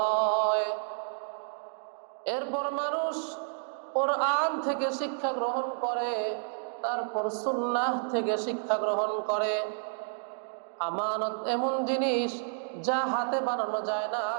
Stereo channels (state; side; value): silent; left; digital silence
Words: এরপর মানুষ কোরআন থেকে শিক্ষা গ্রহণ করে, তারপর সুন্নাহ থেকে শিক্ষা গ্রহণ করে। আমানত এমন জিনিস যা হাতে বানানো যায় না,